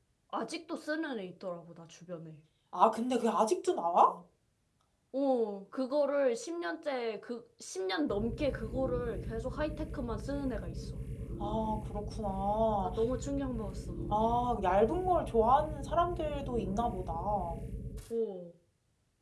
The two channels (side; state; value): both; identical; correlation 1.00